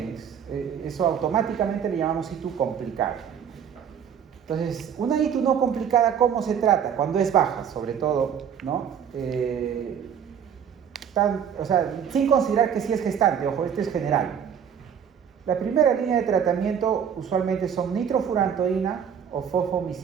Eso automáticamente le llamamos ITU complicado. Entonces, una ITU no complicada, ¿cómo se trata? Cuando es baja, sobre todo, ¿no? O sea, sin considerar que sí es gestante, ojo, esto es general. La primera línea de tratamiento usualmente son nitrofurantoína o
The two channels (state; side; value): quieter; left; 8.1 dB